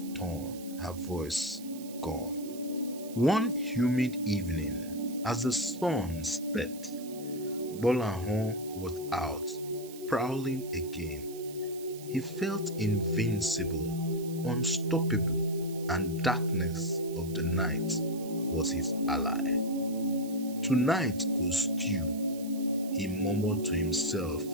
torn, her voice gone. One humid evening, as the sun set, Gbolahan was out, prowling again. He felt invincible, unstoppable, and darkness of the night was his ally. "Tonight goes stew," he murmured to himself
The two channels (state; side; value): noise; right; hiss, 17 dB below the sound